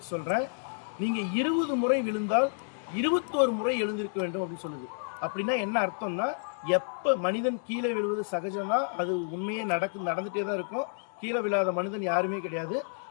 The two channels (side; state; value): right; silent; digital silence